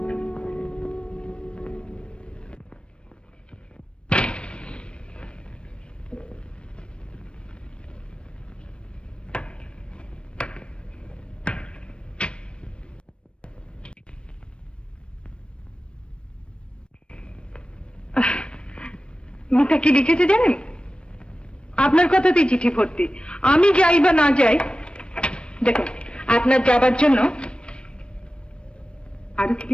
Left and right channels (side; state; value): right; late; 0.057 ms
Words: মিতা কি লিখেছে জানেন? আপনার কথাতেই চিঠি ভর্তি। আমি যাই বা না যাই, দেখুন আপনার যাবার জন্য আরো কি